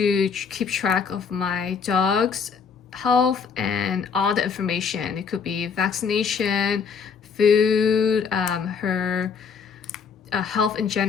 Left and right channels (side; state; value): right; quieter; 6.1 dB